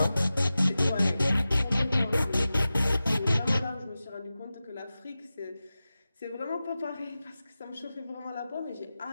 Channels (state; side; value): inverted; both; correlation -0.95